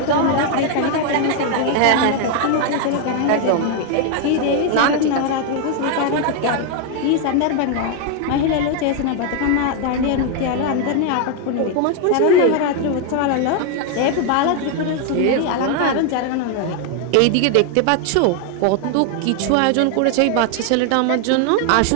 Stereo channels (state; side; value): different; both; correlation 0.01